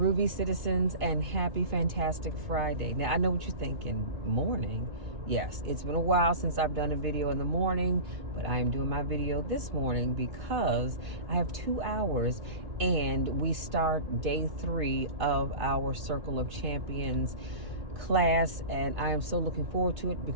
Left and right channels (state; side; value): late; left; 2.5 ms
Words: citizens, and happy fantastic Friday. Now, I know what you're thinking. Morning? Yes, it's been a while since I've done a video in the morning, but I am doing my video this morning because I have 2 hours and we start day 3 of our Circle of Champions class, and I am so looking forward to it